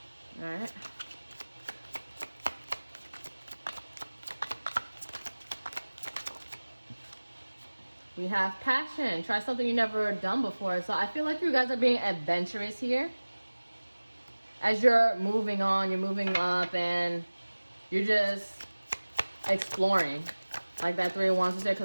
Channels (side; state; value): both; inverted; correlation -1.00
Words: right. We have passion. Try something you've never done before. So I feel like you guys are being adventurous here. As you're moving on, you're moving up, and you're just exploring. Like that Three of Wands is there